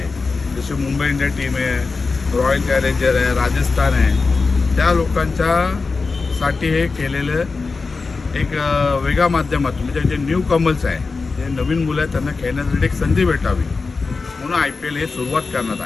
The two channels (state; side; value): quieter; right; 4.3 dB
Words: जसे मुंबई इंडिया टीम आहे, रॉयल चॅलेंजर आहे, राजस्थान आहे, त्या लोकांच्यासाठी हे केलेलं एक वेगळ्या माध्यमातून, म्हणजे जे न्यू कमल्स आहे, जे नवीन मुलं आहेत, त्यांना खेळण्यासाठी एक संधी भेटावी म्हणून IPL हे सुरुवात करण्यात